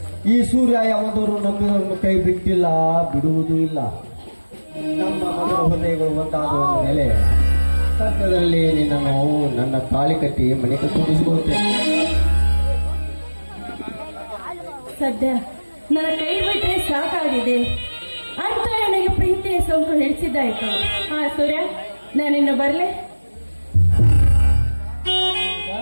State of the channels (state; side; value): inverted; both; correlation -1.00